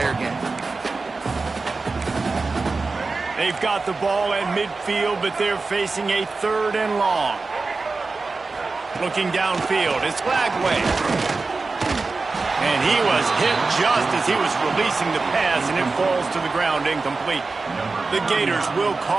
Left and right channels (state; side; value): quieter; left; 3.9 dB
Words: game. They've got the ball at midfield, but they're facing a 3rd and long. Looking downfield, it's Lagway. And he was hit just as he was releasing the pass, and it falls to the ground incomplete. The Gators will